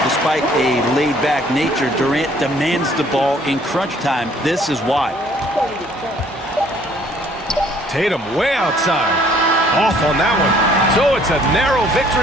Despite a laid-back nature, Durant demands the ball in crunch time. This is why. Tatum way outside. Off on that one. So it's a narrow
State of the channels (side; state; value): both; normal; correlation 0.60